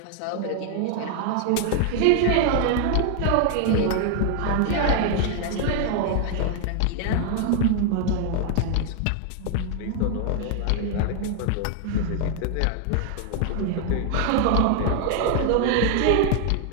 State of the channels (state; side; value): different; both; correlation 0.00